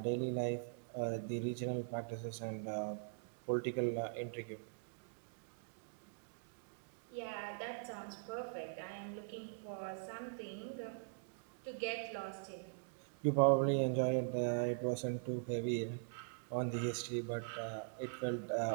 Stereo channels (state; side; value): silent; left; digital silence